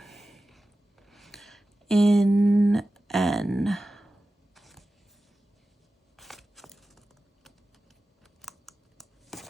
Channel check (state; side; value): normal; both; correlation 0.94